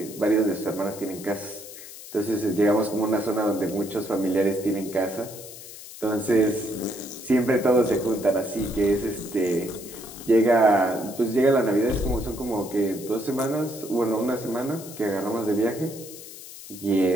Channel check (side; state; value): left; noise; hiss, 15 dB below the sound